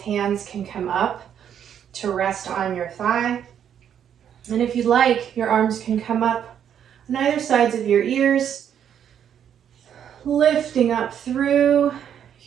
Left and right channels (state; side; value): quieter; left; 9.1 dB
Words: hands can come up to rest on your thigh. And if you'd like, your arms can come up on either sides of your ears, lifting up through